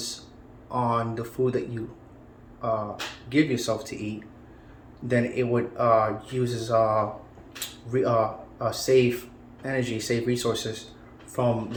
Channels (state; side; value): identical; both; correlation 1.00